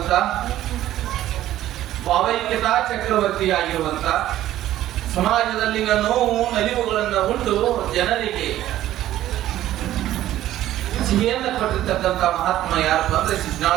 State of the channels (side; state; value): left; quieter; 13.5 dB